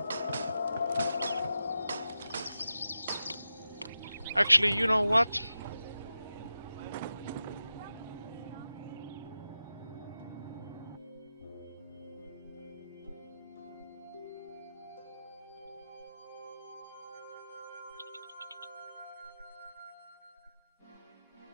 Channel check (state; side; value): inverted; both; correlation -0.90